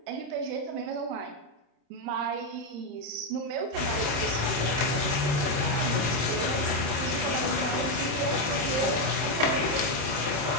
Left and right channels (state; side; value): late; left; 35 ms